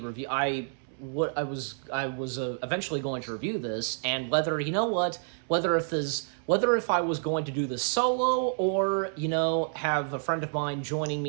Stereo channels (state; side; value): silent; left; 59 dB below the other